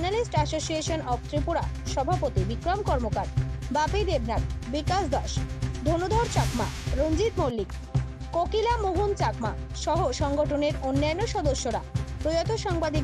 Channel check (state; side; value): identical; both; correlation 1.00